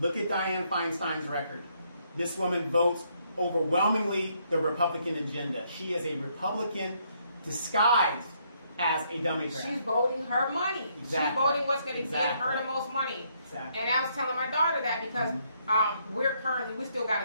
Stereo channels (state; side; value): inverted; both; correlation -0.71